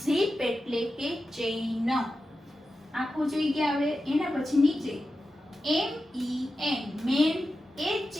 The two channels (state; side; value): normal; both; correlation 0.92